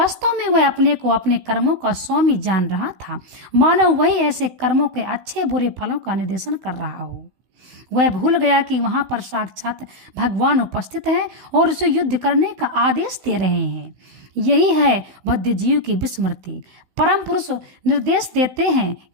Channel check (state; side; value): late; left; 15 ms